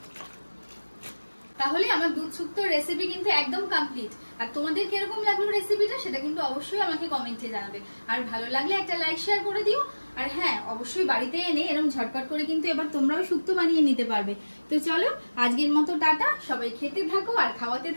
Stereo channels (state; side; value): inverted; both; correlation -1.00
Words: তাহলে আমার দুধ শুক্তোর রেসিপি কিন্তু একদম কমপ্লিট। আর তোমাদের কিরকম লাগলো রেসিপিটা সেটা কিন্তু অবশ্যই আমাকে কমেন্টে জানাবে। আর ভালো লাগলে একটা লাইক শেয়ার করে দিও। আর হ্যাঁ, অবশ্যই বাড়িতে এনে এরকম ঝটপট করে কিন্তু এবার তোমরাও শুক্তো বানিয়ে নিতে পারবে। তো চলো আজকের মতো টাটা। সবাই খেতে থাকো আর খাওয়াতে